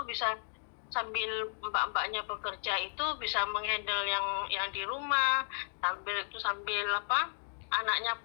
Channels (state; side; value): silent; right; 55 dB below the other